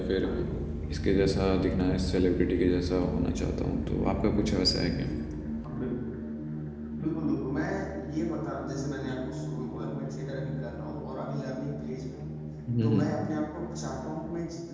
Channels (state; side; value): identical; both; correlation 1.00